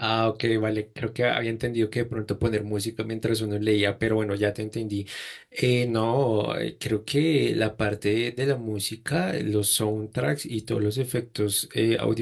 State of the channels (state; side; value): identical; both; correlation 1.00